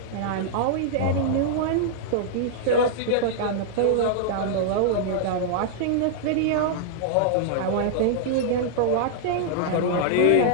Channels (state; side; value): different; both; correlation -0.01